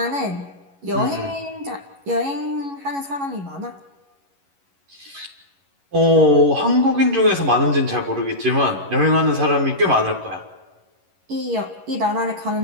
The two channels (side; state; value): left; late; 11 ms